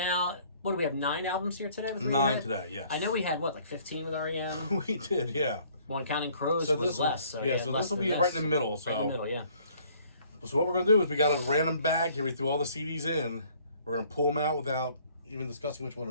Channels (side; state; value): both; inverted; correlation -0.59